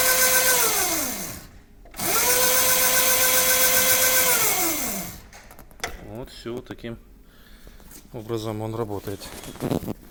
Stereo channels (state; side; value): identical; both; correlation 1.00